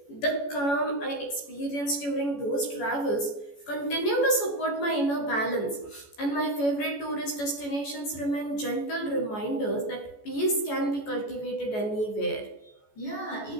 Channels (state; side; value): late; right; 14 ms